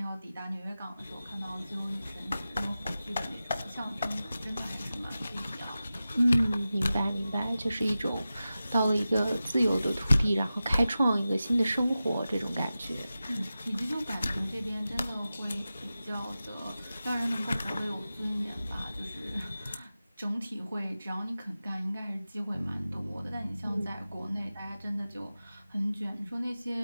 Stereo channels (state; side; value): inverted; both; correlation -0.94